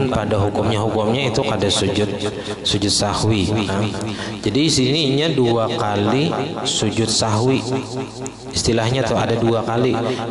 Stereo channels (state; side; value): identical; both; correlation 1.00